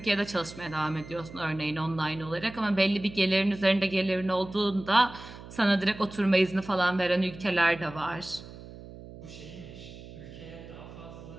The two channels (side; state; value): right; noise; hum, 15 dB below the sound